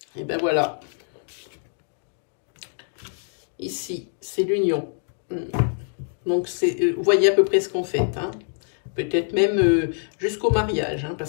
Et ben voilà. Ici, c'est l'union. Donc, vous voyez à peu près ce qu'on fait. Hein. Peut-être même jusqu'au mariage. Hein,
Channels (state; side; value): silent; right; 62 dB below the other